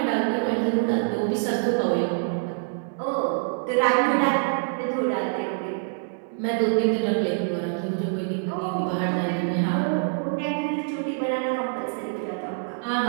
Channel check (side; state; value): left; silent; digital silence